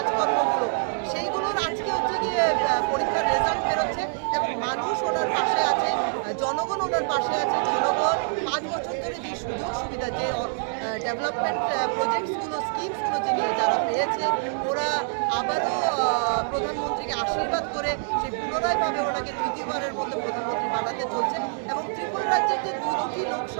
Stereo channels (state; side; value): silent; left; digital silence